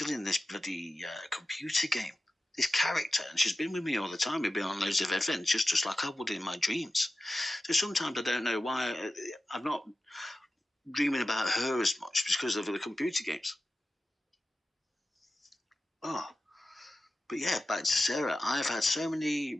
in this bloody computer game, this character, and she's been with me all the time. We've been on loads of adventures, just like I would in my dreams. So sometimes I don't know why I'm not dreaming about her as much because of the computer games. Oh, but yeah, back to Sarah. I've had so many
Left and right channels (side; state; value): both; normal; correlation 0.93